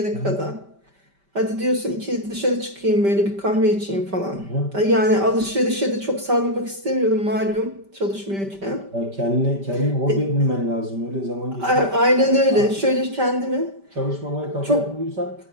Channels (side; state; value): left; late; 5.1 ms